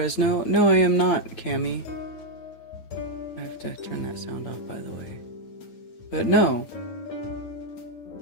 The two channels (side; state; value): right; late; 9.1 ms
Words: No, I am not, Cammy. I have to turn that sound off, by the way. But no.